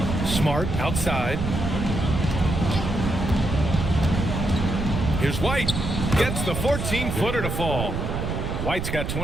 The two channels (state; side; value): noise; right; rumble, 4 dB below the sound